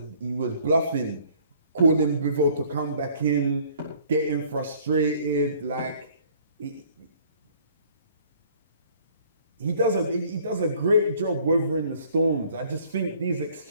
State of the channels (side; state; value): both; inverted; correlation -0.57